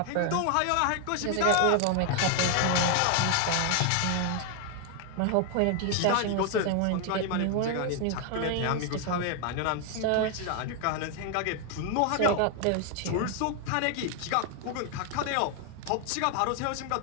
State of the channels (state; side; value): different; both; correlation 0.00